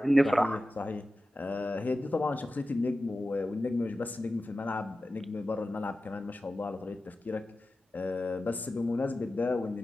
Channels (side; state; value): both; normal; correlation 0.94